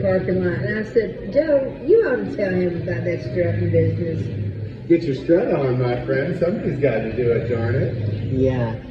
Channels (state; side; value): identical; both; correlation 1.00